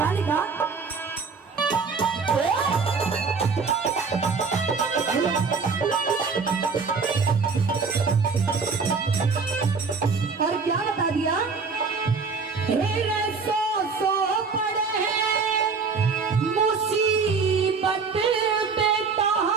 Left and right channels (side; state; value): left; quieter; 4.9 dB